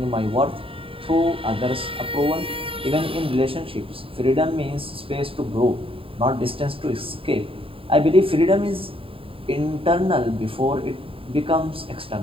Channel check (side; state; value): left; late; 0.27 ms